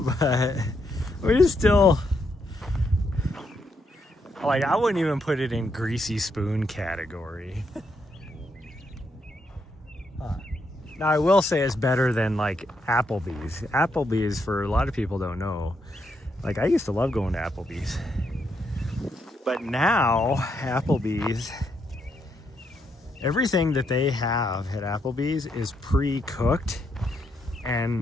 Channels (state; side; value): normal; both; correlation 0.78